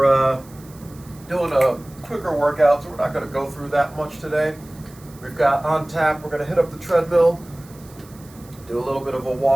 doing a quicker workout, so we're not going to go through that much today. We've got on tap, we're going to hit up the treadmill, do a little bit of a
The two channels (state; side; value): noise; right; hiss, 24 dB below the sound